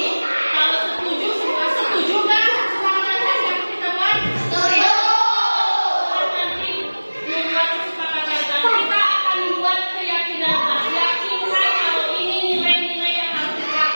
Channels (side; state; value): both; inverted; correlation -1.00